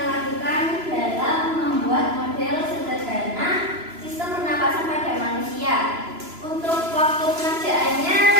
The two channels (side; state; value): left; late; 3.0 ms